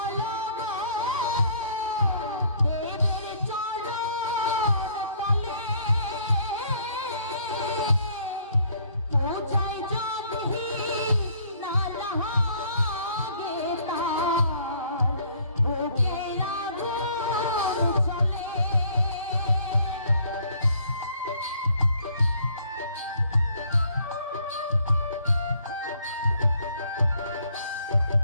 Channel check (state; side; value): inverted; both; correlation -0.60